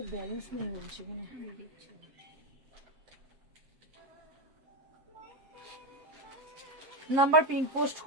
ব্যালেন্স নেই বলছে কিনা। নাম্বার পিঙ্ক পোস্ট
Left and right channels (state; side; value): late; left; 7.5 ms